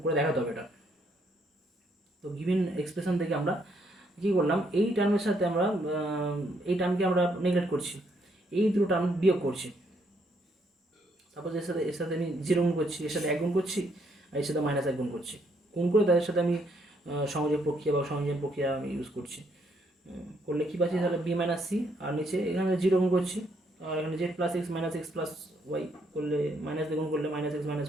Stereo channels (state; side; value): normal; both; correlation 0.72